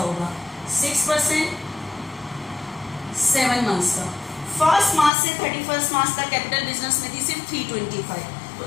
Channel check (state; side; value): drops out; right; at 5.1 s